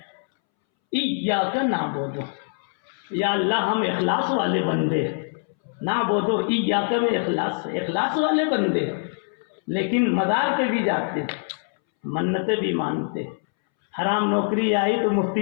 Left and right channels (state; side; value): silent; right; 63 dB below the other